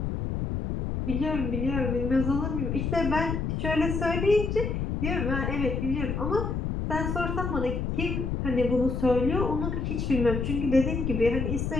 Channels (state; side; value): noise; left; rumble, 2 dB below the sound